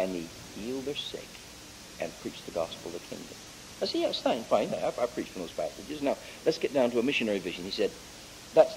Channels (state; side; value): identical; both; correlation 1.00